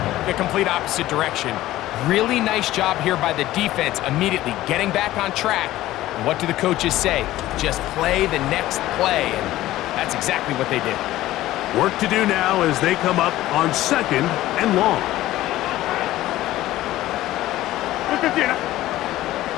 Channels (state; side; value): quieter; right; 15.5 dB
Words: the complete opposite direction. Really nice job here by the defense, immediately getting back on track. And what do the coaches say? Just play the next play, and that's exactly what they did. Work to do now as they come up on 2nd and long.